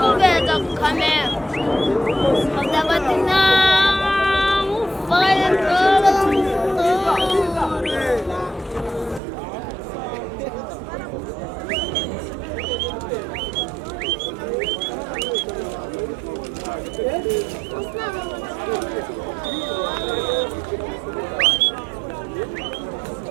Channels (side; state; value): left; drops out; at 9.2 s